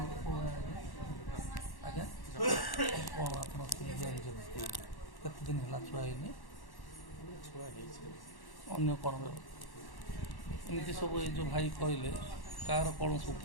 ଆଜ୍ଞା କ'ଣ ଆପଣ ଜାଣିଛନ୍ତି କେତେ ଦିନ ହେଲା ଛୁଆ ହେଇନି? ଛୁଆ ହେଇଛି ଅନ୍ୟ କ'ଣ ଏମିତି ସବୁ ଏଇ ଯେଉଁ ଭାଇ କହିଲେ କାହାର କ'ଣ ସବୁ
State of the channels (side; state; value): right; late; 1.1 ms